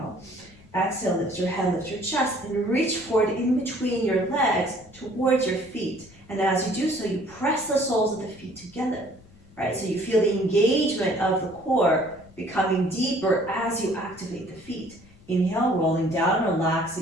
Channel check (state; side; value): noise; left; rumble, 25 dB below the sound